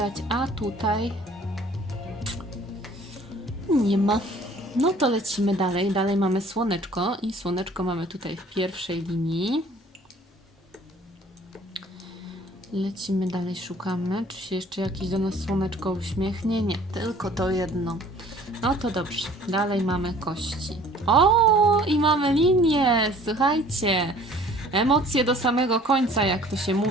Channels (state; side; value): normal; both; correlation 0.52